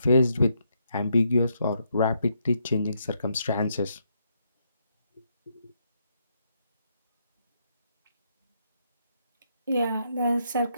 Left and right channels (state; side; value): inverted; both; correlation -0.77